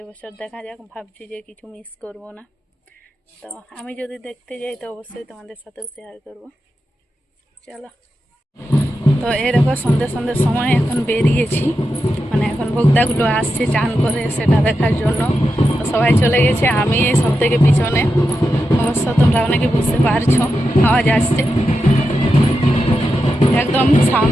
দেখা যাক, ভাবছি যে কিছু মিস করব না। তো আমি যদি দেখতে যাই তো অবশ্যই তোমাদের সাথেও শেয়ার করব। চলো। তো এই দেখো, সন্ধ্যের সময় এখন বেরিয়েছি, মানে এখন ভোক্তাগুলো আসছে চান করে, সেটা দেখার জন্য। তো সবাই চলে গেছে, আমি এই সব থেকে পিছনে। অবশ্য তোমরা অনেকে বুঝতে পারছো, আওয়াজ আসছে, একদম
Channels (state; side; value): normal; both; correlation 0.88